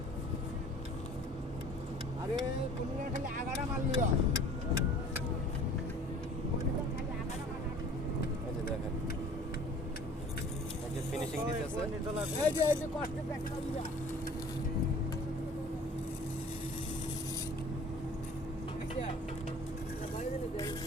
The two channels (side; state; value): both; normal; correlation 0.48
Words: আরে তুমি খালি আগাটা মারলিও। এই যে দেখেন, এই যে ফিনিশিং দিতেছে। এই যে কষ্টে দেখা দিবা।